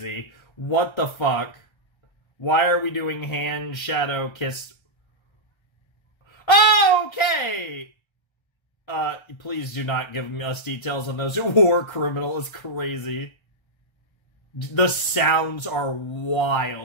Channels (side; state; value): right; late; 1.3 ms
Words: What the fuck? Why are we doing hand shadow kiss? Oh, okay! Please do not give us details on those. War criminal is crazy. The sounds are